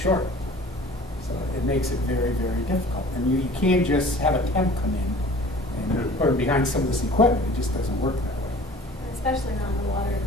So it makes it very, very difficult. And you can't just have a temp come in and put him behind some of this equipment. It just doesn't work that way. Especially not in the water and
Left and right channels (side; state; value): both; normal; correlation 0.46